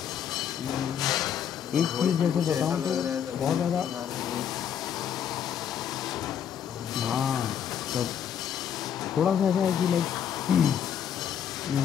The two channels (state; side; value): quieter; right; 8.8 dB